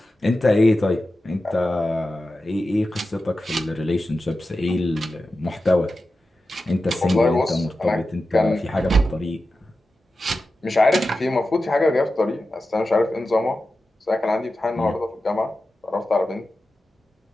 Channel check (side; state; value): both; normal; correlation 0.93